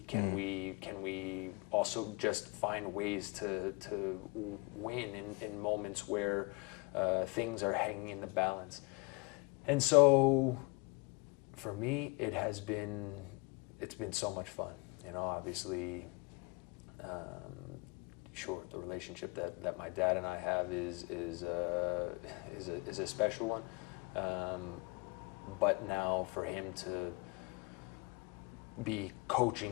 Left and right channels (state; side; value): quieter; right; 27.2 dB